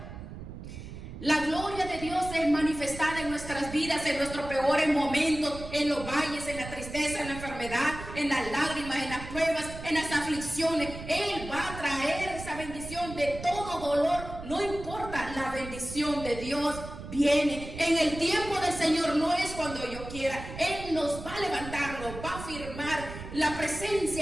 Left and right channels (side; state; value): right; noise; rumble, 11 dB below the sound